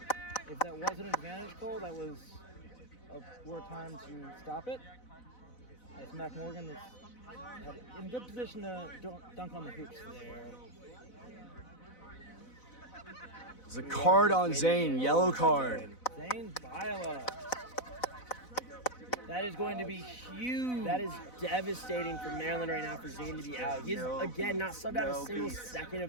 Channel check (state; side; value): late; right; 4.0 ms